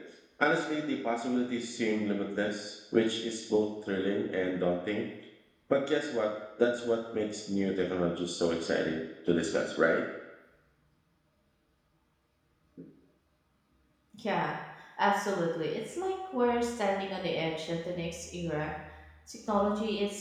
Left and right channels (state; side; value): identical; both; correlation 1.00